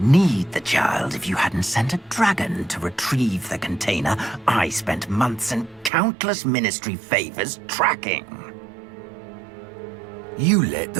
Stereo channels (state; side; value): drops out; left; at 5.9 s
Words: need the child if you hadn't sent a dragon to retrieve the container I spent months and countless ministry favors tracking. You let